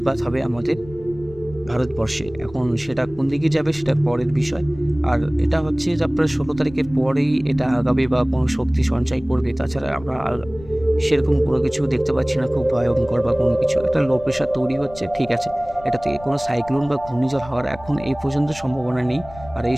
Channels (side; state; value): left; noise; rumble, 18 dB below the sound